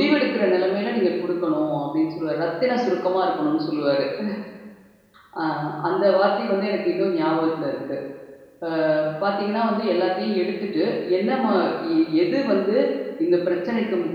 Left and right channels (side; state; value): both; identical; correlation 1.00